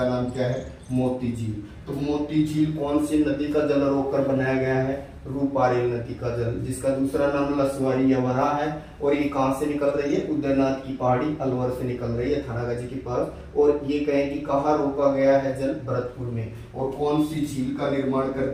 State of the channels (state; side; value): identical; both; correlation 1.00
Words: नाम क्या है? मोती झील। तो मोती झील कौन सी नदी का जल रोक कर बनाया गया है? रूपारेल नदी का जल, जिसका दूसरा नाम लसवारी या वराह है। और ये कहाँ से निकल रही है? उदयनाथ की पहाड़ी अलवर से निकल रही है थानागाजी के पास। और ये कहें कि कहाँ रोका गया है जल? भरतपुर में। और कौन सी झील का निर्माण कर